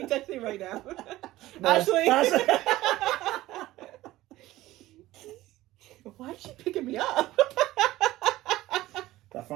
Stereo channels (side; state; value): left; quieter; 16.6 dB